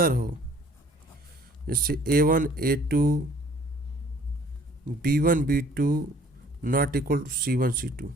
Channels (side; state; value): both; normal; correlation 0.55